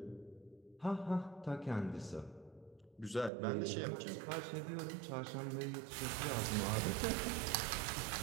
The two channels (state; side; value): drops out; left; at 3.3 s